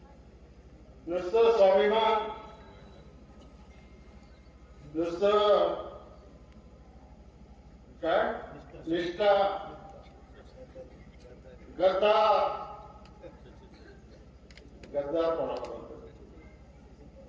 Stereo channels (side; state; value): both; identical; correlation 1.00